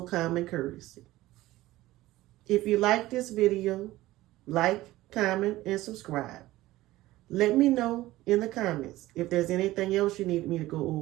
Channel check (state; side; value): quieter; left; 17.0 dB